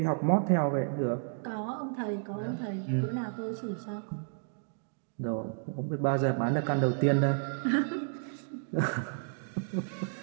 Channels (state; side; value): silent; left; digital silence